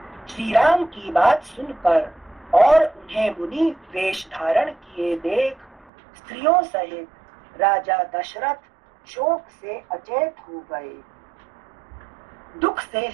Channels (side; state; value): left; drops out; at 5.9 s